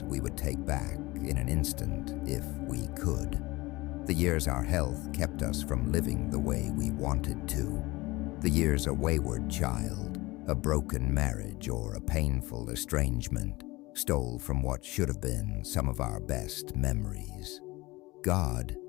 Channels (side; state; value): right; quieter; 21.1 dB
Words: we would take back in an instant if we could. The years our health kept us from living the way we wanted to. The years a wayward child, a broken marriage, or a painful estrangement stole from what should have been some of our best memories. God,